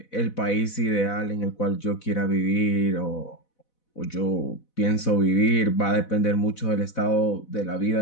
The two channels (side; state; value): right; late; 4.0 ms